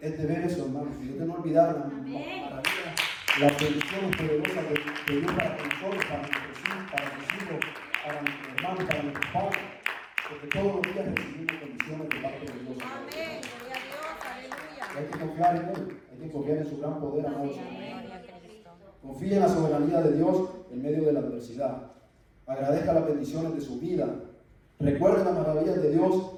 de ver eso, hermanos. Y de no olvidar las maravillas, las bendiciones poderosas de Dios para nosotros, para nuestros hijos, para nuestros hermanos, para nuestros padres. Porque todos los días recibimos bendiciones de parte de Dios. Amén. Gloria a Dios. Aleluya. Hay que confiar en Él. Hay que confiar en su gran poder, amados. Gloria a Cristo. Confíe en la soberanía de Dios en medio de la adversidad. Agradezca las bendiciones de su vida. Recuerde las maravillas de Dios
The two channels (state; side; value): identical; both; correlation 1.00